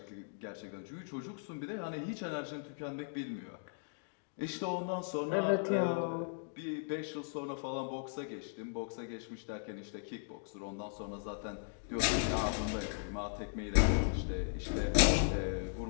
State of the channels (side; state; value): right; silent; digital silence